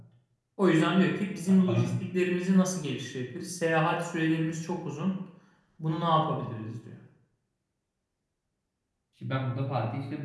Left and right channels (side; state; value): both; identical; correlation 1.00